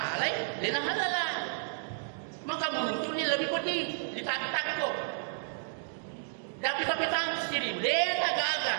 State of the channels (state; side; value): silent; left; digital silence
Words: Lena halala. Maka muncul ini lebih pedih. Ditatak kok. Tapi sendiri. Lena gagal.